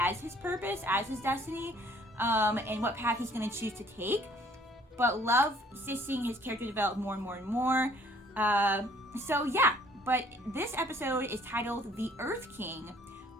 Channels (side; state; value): both; normal; correlation 0.59